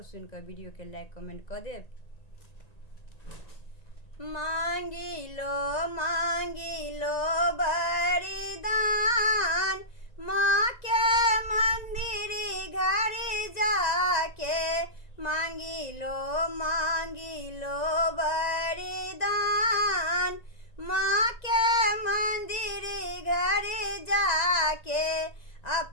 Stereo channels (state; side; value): late; right; 2.0 ms